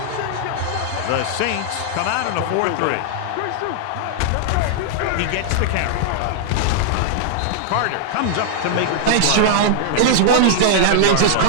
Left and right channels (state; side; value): different; both; correlation -0.01